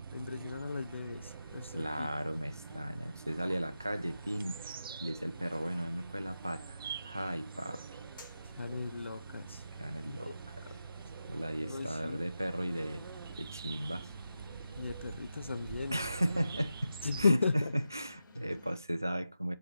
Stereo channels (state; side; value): inverted; both; correlation -0.90